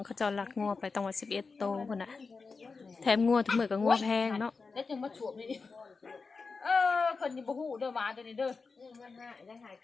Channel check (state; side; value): quieter; right; 4.5 dB